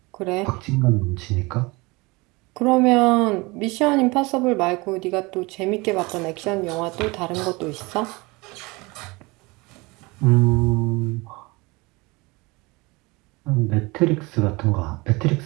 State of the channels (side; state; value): left; quieter; 24.5 dB